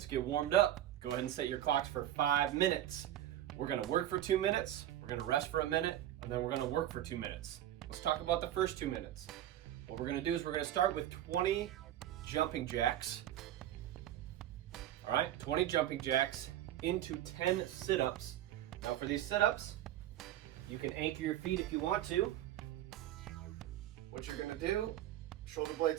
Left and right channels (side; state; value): left; quieter; 12.6 dB